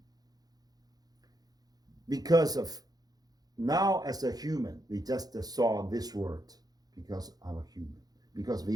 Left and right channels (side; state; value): left; late; 0.19 ms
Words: Because of now as a human, we just saw this word because I'm human, because